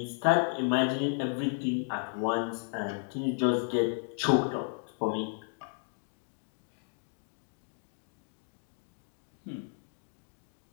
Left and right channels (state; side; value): silent; right; 55 dB below the other